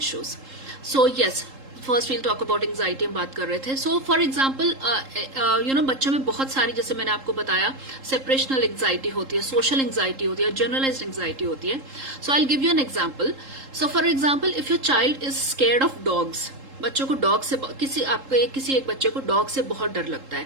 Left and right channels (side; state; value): left; late; 3.7 ms